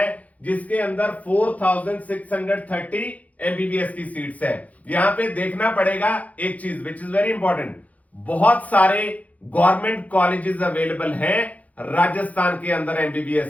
जिसके अंदर 4630 एमबीबीएस की सीट्स है। यहां पे देखना पड़ेगा एक चीज विच इज वेरी इंपॉर्टेंट, बहुत सारे गवर्नमेंट कॉलेजेस अवेलेबल हैं राजस्थान के अंदर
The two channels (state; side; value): late; right; 0.071 ms